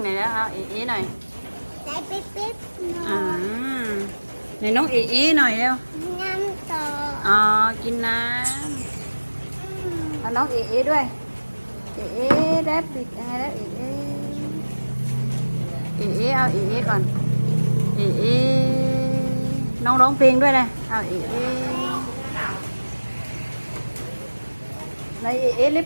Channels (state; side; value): inverted; both; correlation -1.00